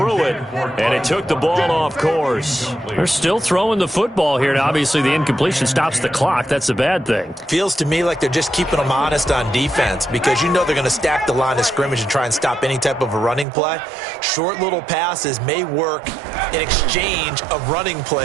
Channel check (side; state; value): left; drops out; at 13.5 s